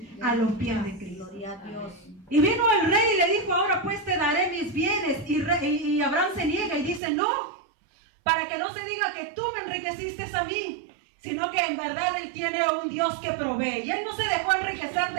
A los pies de Cristo. Y vino el rey y le dijo: ahora pues te daré mis bienes. Y Abraham se niega y dice: no, para que no se diga que tú me enriqueciste a mí, sino que en verdad Él tiene a un Dios que provee. Y Él no se dejó enriquecer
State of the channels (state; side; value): drops out; left; at 7.0 s